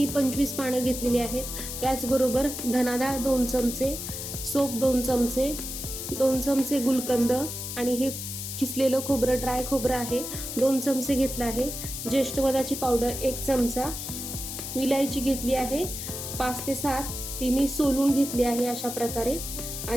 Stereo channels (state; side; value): noise; left; hiss, 6 dB below the sound